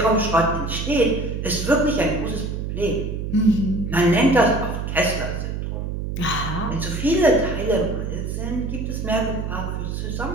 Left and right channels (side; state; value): right; noise; hum, 4 dB below the sound